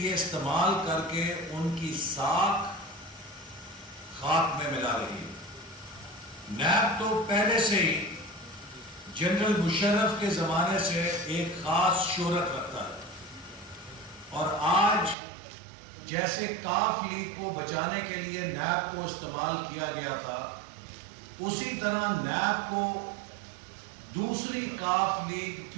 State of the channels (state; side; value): drops out; left; at 15.2 s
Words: استعمال کر کے ان کی ساکھ خاک میں ملا رہی ہے۔ نیب تو پہلے سے ہی جنرل مشرف کے زمانے سے ایک خاص شہرت رکھتا ہے، اور آج جیسے کاف لیگ کو بچانے کے لیے نیب کو استعمال کیا گیا تھا، اسی طرح نیب کو دوسری کاف لیگ